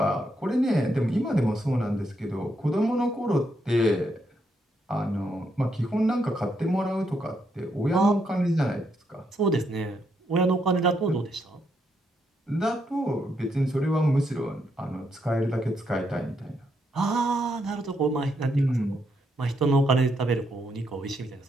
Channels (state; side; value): normal; both; correlation 0.78